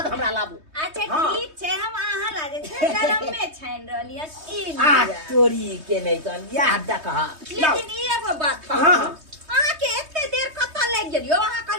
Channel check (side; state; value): left; late; 3.2 ms